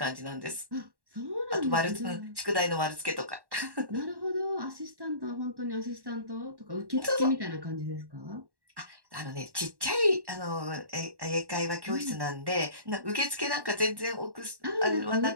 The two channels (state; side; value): late; left; 1.1 ms